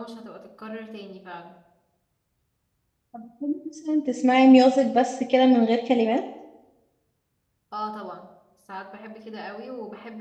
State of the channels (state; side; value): identical; both; correlation 1.00